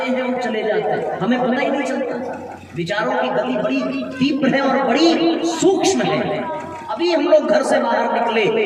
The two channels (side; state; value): both; identical; correlation 1.00